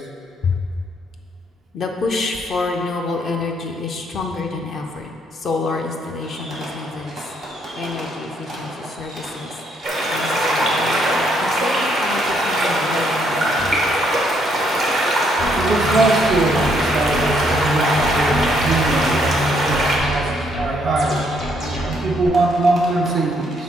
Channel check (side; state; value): both; normal; correlation 0.71